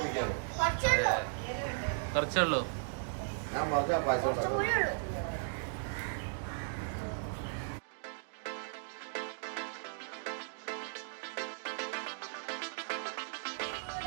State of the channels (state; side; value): silent; left; digital silence